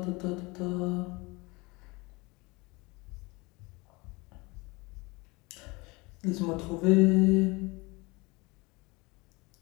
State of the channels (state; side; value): quieter; right; 25.2 dB